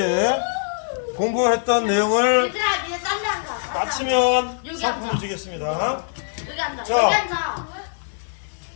공부했던 내용을 얘들아, 니네 딴데 앉아. 마치면 여기 상품을 앉아. 주겠습니다. 여기 앉아. 자. 여기 앉아.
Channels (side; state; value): right; silent; digital silence